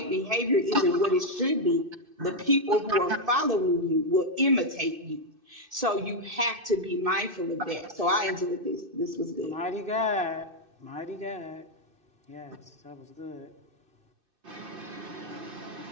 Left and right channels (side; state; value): left; late; 2.6 ms